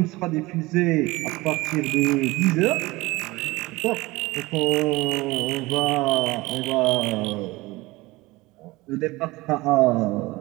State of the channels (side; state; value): left; quieter; 21.2 dB